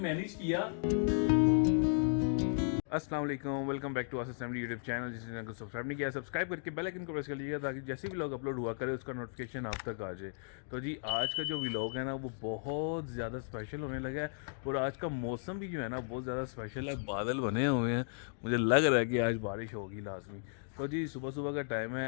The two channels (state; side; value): silent; right; digital silence